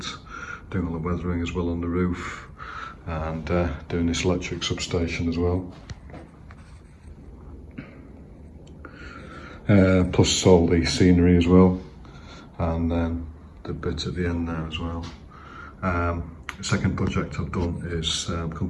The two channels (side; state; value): both; identical; correlation 1.00